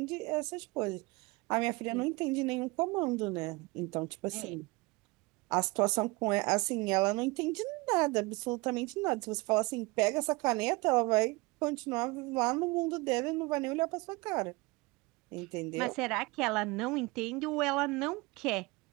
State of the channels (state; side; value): quieter; left; 24.5 dB